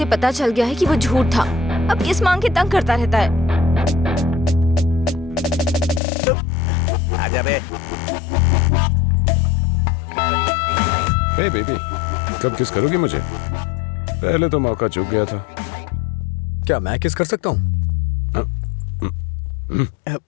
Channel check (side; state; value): right; drops out; at 6.0 s